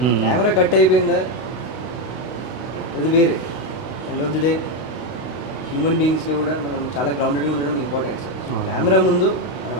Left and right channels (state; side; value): late; right; 32 ms